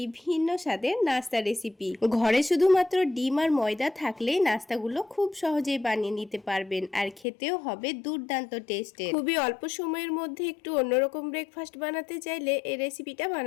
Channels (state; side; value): drops out; right; at 7.2 s